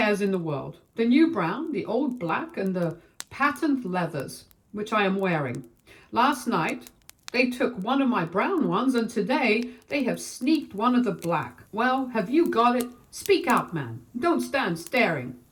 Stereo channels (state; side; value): identical; both; correlation 1.00